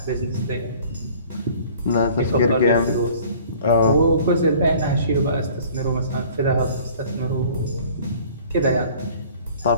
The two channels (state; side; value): inverted; both; correlation -0.50